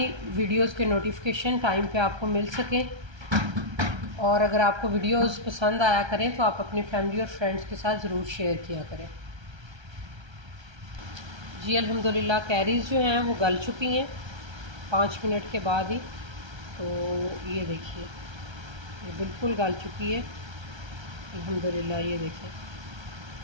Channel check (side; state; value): left; late; 1.3 ms